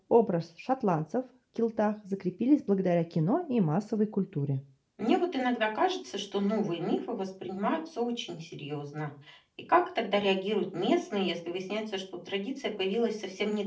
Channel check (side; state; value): both; identical; correlation 1.00